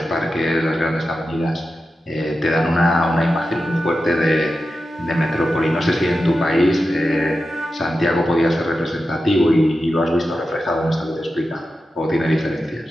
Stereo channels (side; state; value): both; normal; correlation 0.91